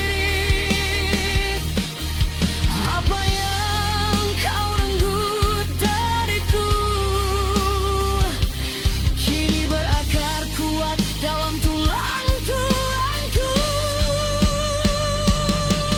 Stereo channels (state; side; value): identical; both; correlation 1.00